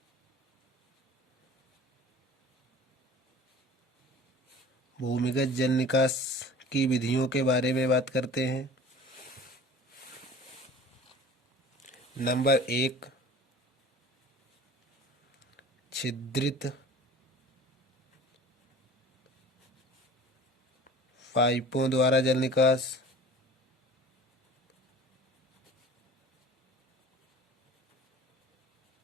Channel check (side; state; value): both; normal; correlation 0.43